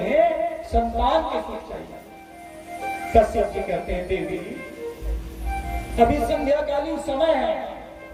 संतान के सुख चाहिए। कश्यप जी कहते हैं देवी अभी संध्याकालीन समय है,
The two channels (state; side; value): identical; both; correlation 1.00